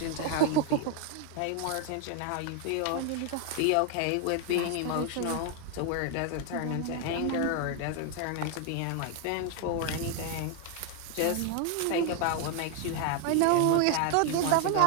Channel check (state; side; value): different; both; correlation 0.00